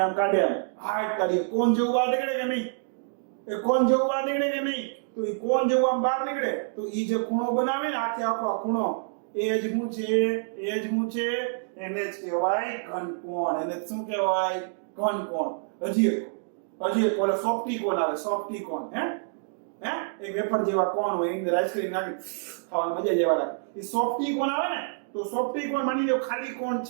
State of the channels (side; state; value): left; silent; digital silence